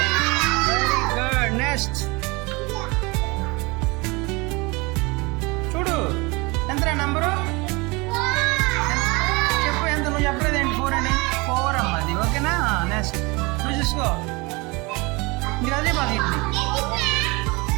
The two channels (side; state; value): left; quieter; 25.8 dB